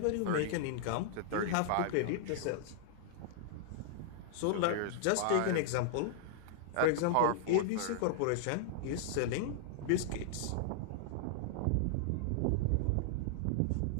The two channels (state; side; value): different; both; correlation -0.01